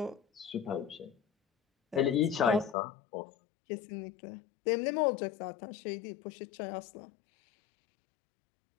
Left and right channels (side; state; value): right; drops out; at 2.8 s